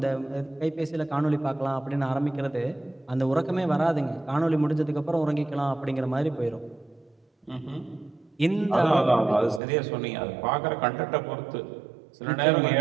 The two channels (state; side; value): drops out; left; at 9.6 s